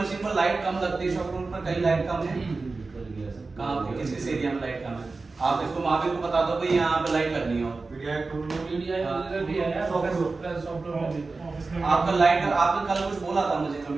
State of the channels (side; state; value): left; quieter; 3.8 dB